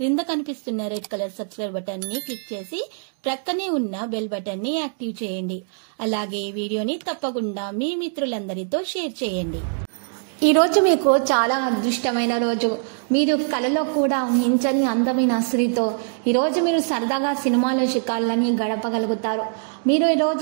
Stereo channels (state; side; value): silent; left; digital silence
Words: కనిపిస్తున్న రెడ్ కలర్ సబ్స్క్రైబ్ బటన్ ని క్లిక్ చేసి ప్రక్కనే ఉన్న బెల్ బటన్ ని యాక్టివ్ చేయండి. అలాగే ఈ వీడియోని తప్పకుండా మీ మిత్రులందరితో షేర్ చేయండి. ఈ రోజు మీకు చాలా అదృష్టమైన రోజు. మీరు కలలో కూడా ఊహించని అందమైన స్త్రీతో ఈరోజు మీరు సరదాగా సినిమాలో షికార్లని గడపగలుగుతారు. మీరు